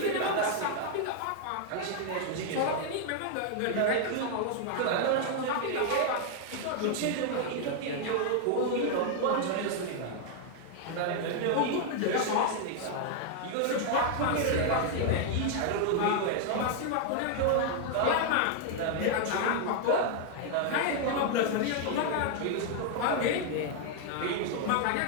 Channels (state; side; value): different; both; correlation 0.00